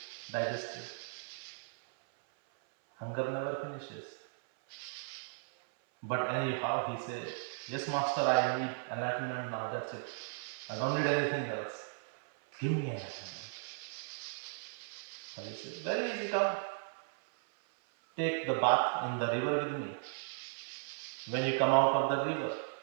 digested. Hunger never finishes. But anyhow, he said, yes, master, I need enlightenment now. That's it. I don't need anything else. Give me enlightenment. So he said, very easy, come. Take the bath in the river with me. When you come out of the river,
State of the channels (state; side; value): silent; left; 54 dB below the other